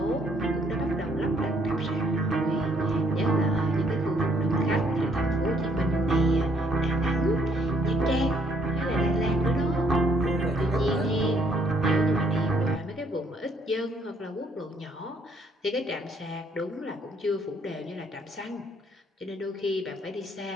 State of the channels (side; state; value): both; normal; correlation 0.67